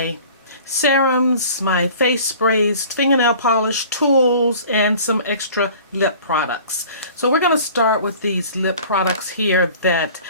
serums, my face sprays, fingernail polish, tools, and some extra lip products. So we're going to start with these lip products here that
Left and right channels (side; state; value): both; inverted; correlation -0.46